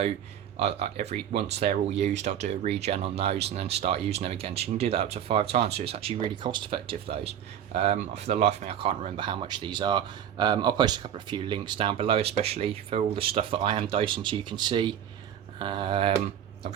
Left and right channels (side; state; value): left; quieter; 9.8 dB